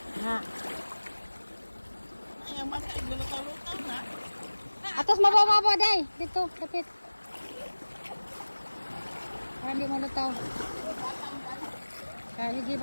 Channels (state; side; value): inverted; both; correlation -1.00